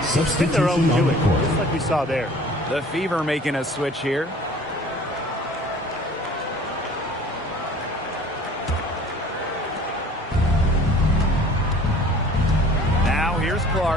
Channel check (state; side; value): normal; both; correlation 0.49